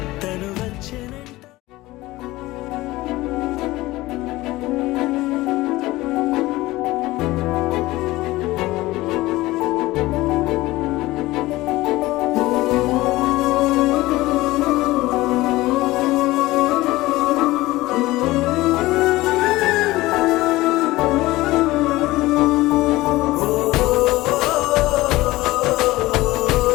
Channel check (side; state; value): right; quieter; 18.7 dB